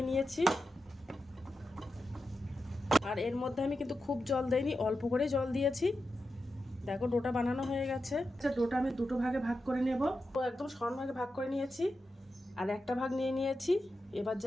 নিয়েছি। আর এর মধ্যে আমি কিন্তু খুব জল দেইনি, অল্প করে জল দিয়েছি। দেখো ডোটা বানানো হয়ে গেছে। আচ্ছা, ডোটা আমি দুটো ভাগে ভাগ করে নেব। তো একদম সমান ভাগে ভাগ করে নিয়েছি আর একটা ভাগ নিয়ে নিয়েছি। এবার যে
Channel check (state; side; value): normal; both; correlation 0.90